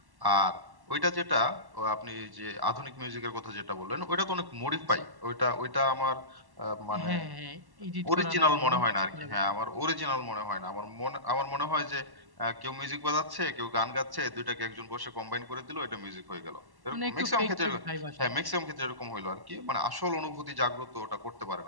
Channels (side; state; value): left; late; 1.1 ms